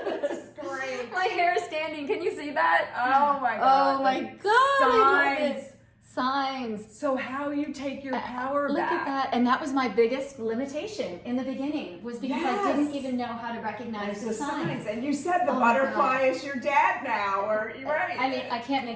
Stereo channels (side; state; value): both; identical; correlation 1.00